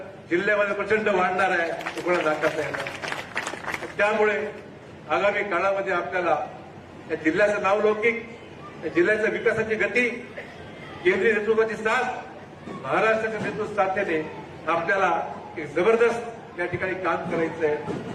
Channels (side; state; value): both; identical; correlation 1.00